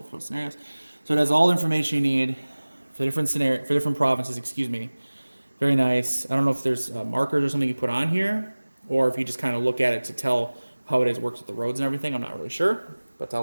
for scenarios. So it has all the information you need for different provinces, excuse me. Very nice. I don't know if there's markers or something you put on here, or if you just kind of look at it to tell how it works with the roads and everything. I'm not really sure, but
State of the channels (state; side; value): inverted; both; correlation -1.00